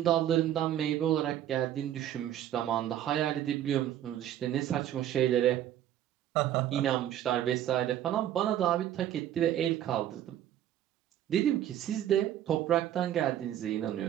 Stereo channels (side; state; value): left; quieter; 11.6 dB